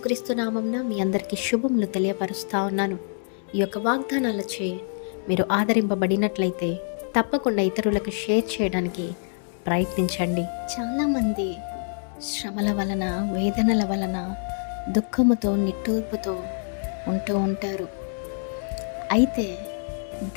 నామమున మీ అందరికీ శుభములు తెలియపరుస్తా ఉన్నాను. ఈ యొక్క వాగ్దానాలచే మీరు ఆదరింపబడినట్లయితే తప్పకుండా ఇతరులకు షేర్ చేయడానికి ప్రయత్నించండి. చాలామంది శ్రమల వలన, వేదనల వలన, దుఃఖముతో, నిట్టూర్పుతో ఉంటూ ఉంటారు. అయితే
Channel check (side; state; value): right; silent; digital silence